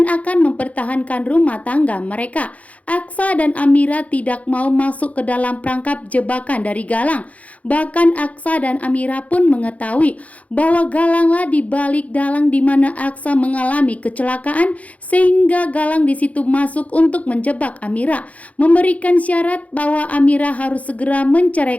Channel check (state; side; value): late; right; 0.068 ms